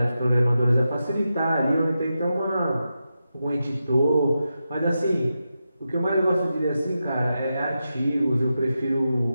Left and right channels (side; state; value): both; inverted; correlation -0.89